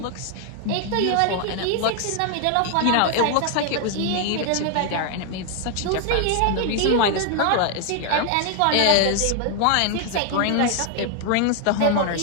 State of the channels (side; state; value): both; different; correlation 0.00